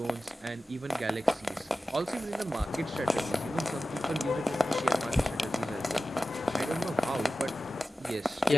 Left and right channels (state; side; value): normal; both; correlation 0.95